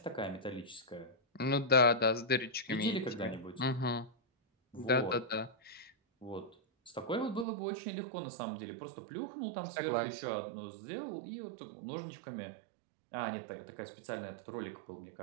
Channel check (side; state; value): left; drops out; at 7.5 s